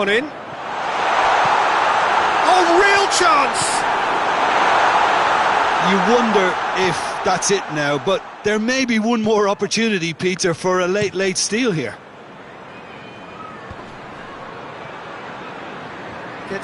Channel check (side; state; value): both; identical; correlation 1.00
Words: in. Oh, real chance! You wonder if that's it now, but there may be one more opportunity, Peter, for a late steal here.